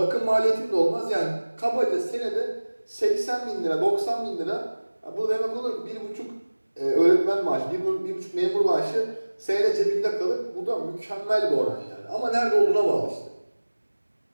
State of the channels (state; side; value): inverted; both; correlation -1.00